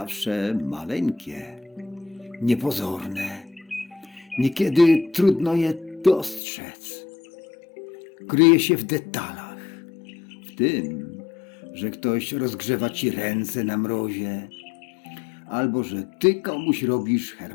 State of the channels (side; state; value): right; drops out; at 6.4 s